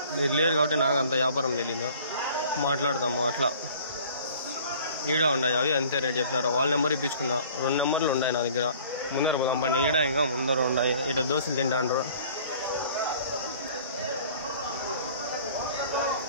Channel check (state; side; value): inverted; both; correlation -0.51